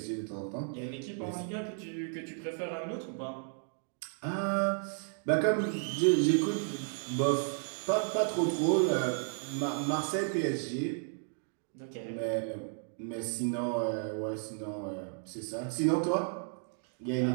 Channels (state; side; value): silent; left; 55 dB below the other